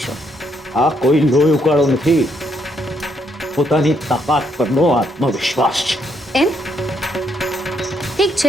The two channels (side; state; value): both; normal; correlation 0.74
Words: આ કોઈ લોહી ઉકાળો નથી, પોતાની તાકાત પરનો આત્મવિશ્વાસ છે. એમ? ઠીક